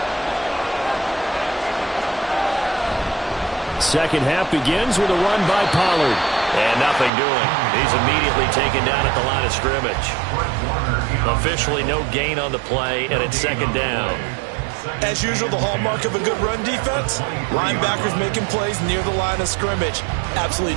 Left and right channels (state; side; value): drops out; left; at 7.1 s